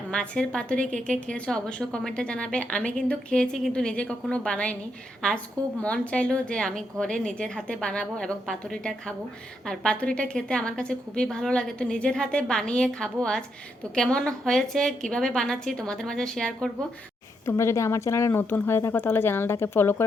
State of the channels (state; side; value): normal; both; correlation 0.79